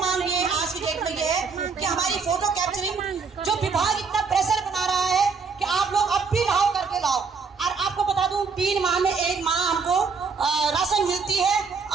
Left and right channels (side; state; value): left; quieter; 5.1 dB